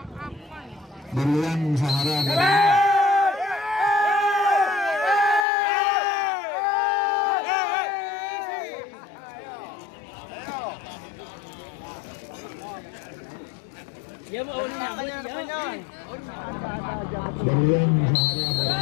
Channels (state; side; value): drops out; right; at 5.5 s